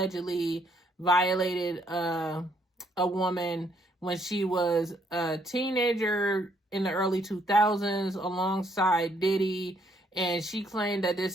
violated a woman when she was a teenager in the early 2000s alongside Diddy. And she claimed that this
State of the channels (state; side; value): normal; both; correlation 0.69